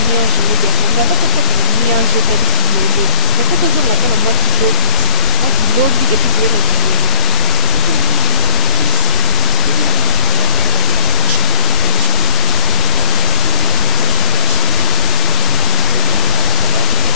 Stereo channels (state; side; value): quieter; right; 3.6 dB